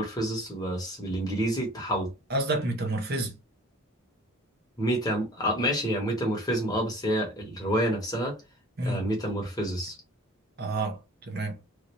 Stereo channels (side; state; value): both; normal; correlation 0.47